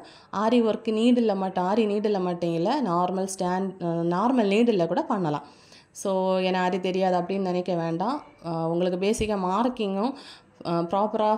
ஆரி ஒர்க் நீடில் மட்டும் ஆரி நீடில் மட்டும் இல்லை நார்மல் நீடில் கூட பண்ணலாம். ஸோ எனக்கு ஆரி தெரியாது அப்படின்னு நினைக்க வேண்டாம். உங்களுக்கு பேசிக்காக மார்க்கிங்கும் ப்ராப்பராக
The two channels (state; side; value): identical; both; correlation 1.00